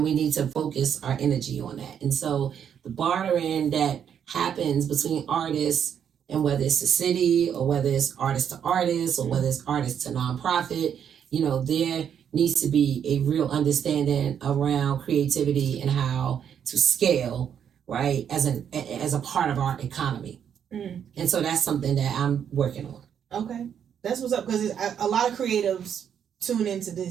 we need to focus our energy on that. And so the bartering that happens between artists, and whether it's the city or whether it's artist to artist or whether it's artist to nonprofit, there needs to be a real understanding around creativity and how to scale, right, as a part of our economy. And so that's something that I'm working on. Okay. That's what's up, because a lot of creatives tune into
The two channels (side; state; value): left; quieter; 8.4 dB